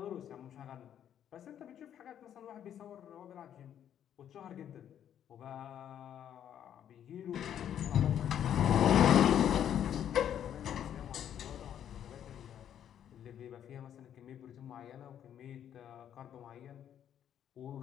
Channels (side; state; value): right; quieter; 9.8 dB